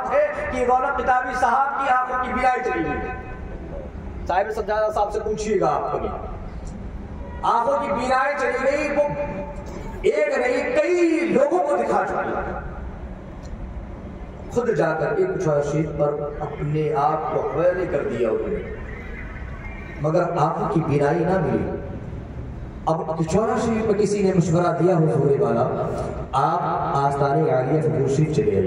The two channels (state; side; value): identical; both; correlation 1.00